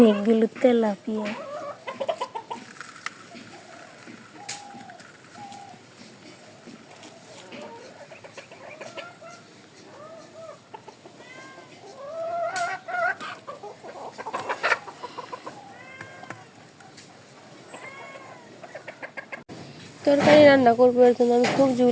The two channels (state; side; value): identical; both; correlation 1.00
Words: তেলাপিয়া। তরকারি রান্না করবো, এর জন্য আমি